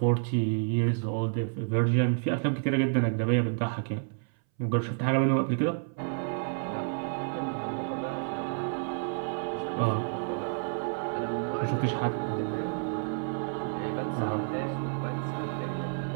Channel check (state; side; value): silent; left; 58 dB below the other